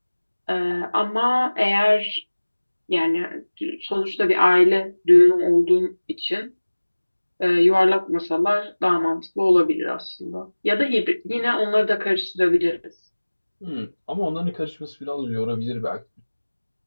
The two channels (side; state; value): both; inverted; correlation -1.00